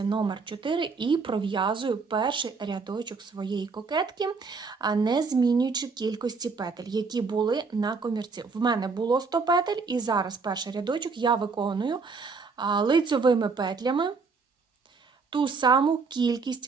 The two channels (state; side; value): quieter; left; 4.7 dB